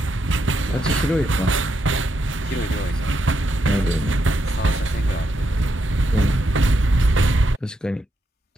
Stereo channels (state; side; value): normal; both; correlation 0.81